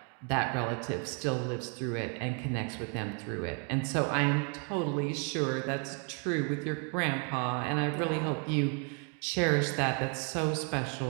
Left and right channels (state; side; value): quieter; left; 37.6 dB